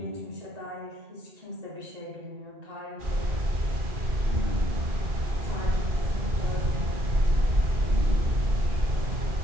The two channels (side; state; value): left; late; 2.4 ms